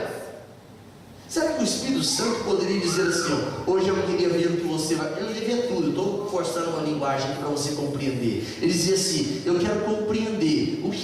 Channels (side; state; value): both; identical; correlation 1.00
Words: Será que o Espírito Santo poderia dizer assim, ó, hoje eu queria ver o que você vai... Eu não queria ver tudo, eu estou forçando uma linguagem para você compreender. Ele dizia assim, eu quero compreender o